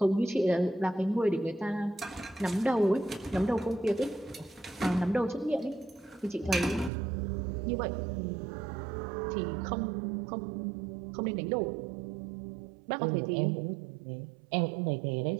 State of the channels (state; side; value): drops out; left; at 6.9 s